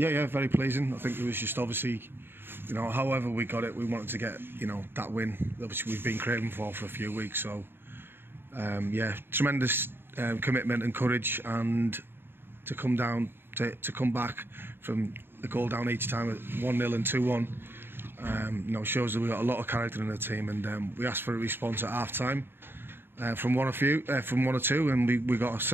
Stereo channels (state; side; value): late; left; 0.10 ms